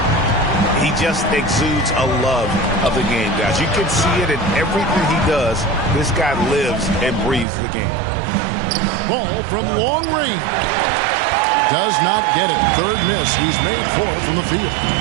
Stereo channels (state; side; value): drops out; left; at 7.5 s